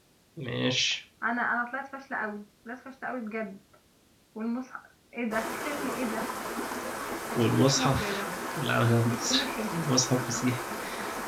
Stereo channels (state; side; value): identical; both; correlation 1.00